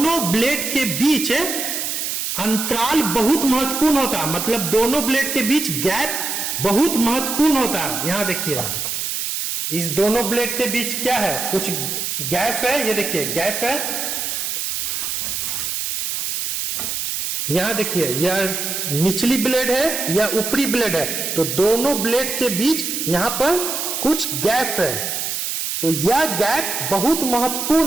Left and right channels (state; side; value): noise; right; hiss, 2 dB below the sound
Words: ब्लेड के बीच अंतराल बहुत महत्वपूर्ण होता है, मतलब दोनों ब्लेड के बीच गैप बहुत महत्वपूर्ण होता है। यहां देखिए इस दोनों ब्लेड के बीच क्या है, कुछ गैप है, ये देखिए गैप है। यहां देखिए यह निचली ब्लेड है या ऊपरी ब्लेड है, तो दोनों ब्लेड के बीच यहां पर कुछ गैप है, तो यह गैप बहुत